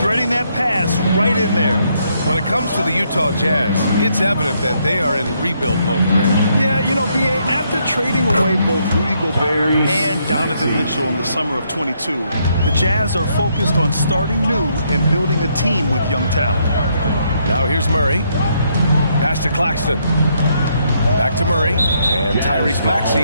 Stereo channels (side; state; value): both; inverted; correlation -0.74